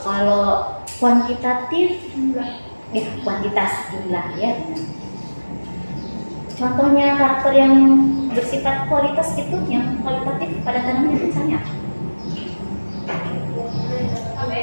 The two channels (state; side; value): inverted; both; correlation -1.00